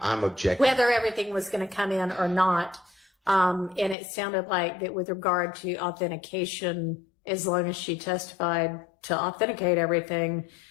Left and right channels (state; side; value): drops out; right; at 4.0 s